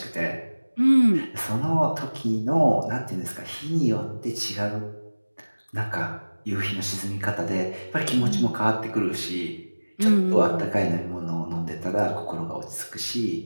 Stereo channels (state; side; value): inverted; both; correlation -1.00